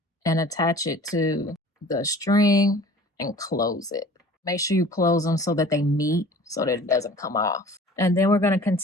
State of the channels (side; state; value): both; normal; correlation 0.46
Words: and attach it to the string and close it. Make sure you close them so that they meet, so that it doesn't come off. And then we're going to